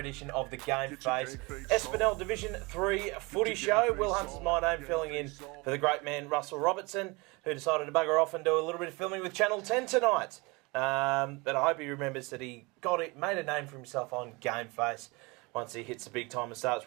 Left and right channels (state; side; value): quieter; left; 26.2 dB